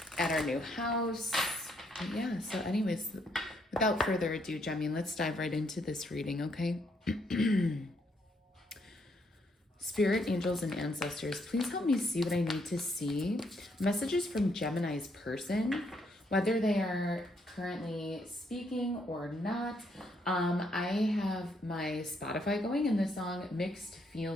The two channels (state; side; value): normal; both; correlation 0.73